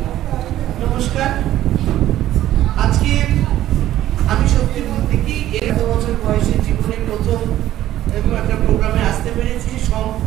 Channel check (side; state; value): left; quieter; 13.3 dB